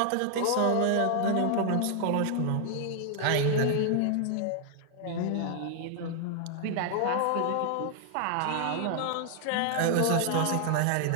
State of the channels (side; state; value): both; different; correlation 0.00